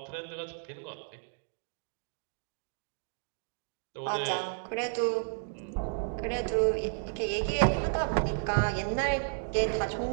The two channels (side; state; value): left; silent; digital silence